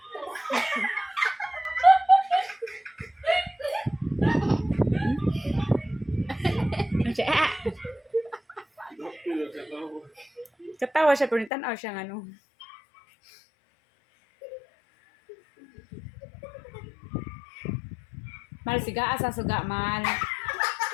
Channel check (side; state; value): right; drops out; at 11.5 s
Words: Siya. Katawa siya pero tanaw siya ng ano. Mal siga asa suga mal.